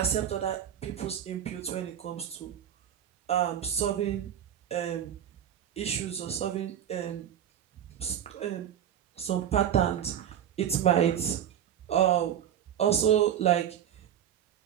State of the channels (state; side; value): quieter; left; 9.9 dB